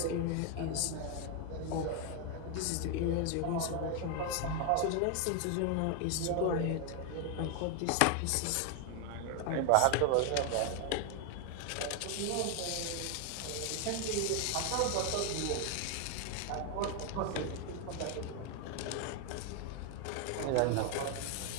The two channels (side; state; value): both; different; correlation 0.01